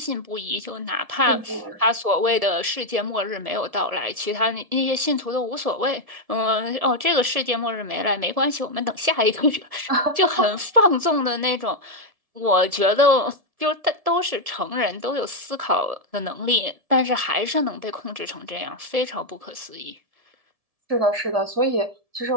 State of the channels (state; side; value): late; left; 1.7 ms